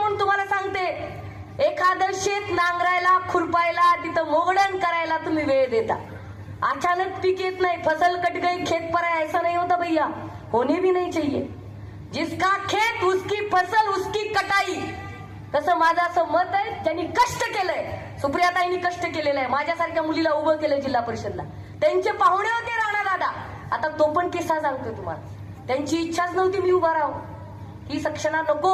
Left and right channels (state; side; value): identical; both; correlation 1.00